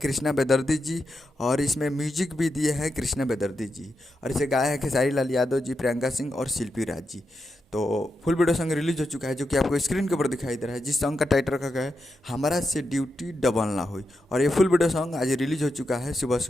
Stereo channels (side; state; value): both; normal; correlation 0.86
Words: बेदर्दी जी और इसमें म्यूजिक भी दिए हैं कृष्णा बेदर्दी जी। और इसे गाया है खेसारी लाल यादव जी, प्रियंका सिंह और शिल्पी राज जी। तो फुल वीडियो सॉन्ग रिलीज हो चुका है जो कि आपको स्क्रीन के ऊपर दिखाई दे रहा है, जिस सॉन्ग का टाइटल रखा गया है हमारा से ड्यूटी डबल ना हुई। और ये फुल वीडियो सॉन्ग आज रिलीज हो चुका है सुबह